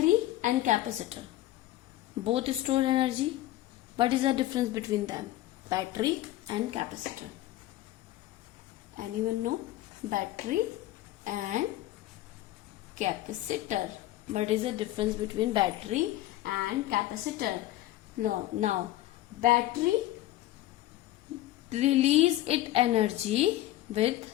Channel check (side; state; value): right; quieter; 15.2 dB